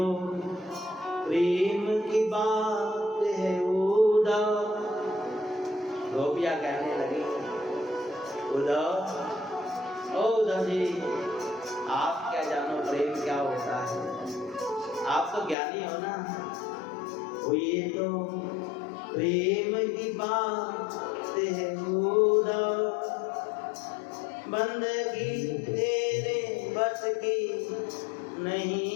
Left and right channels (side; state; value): right; drops out; at 15.6 s